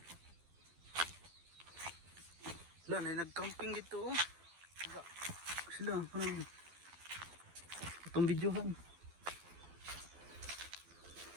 Wala na nag-camping dito oh. Sila, parang itong videohan.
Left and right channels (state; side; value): late; left; 12 ms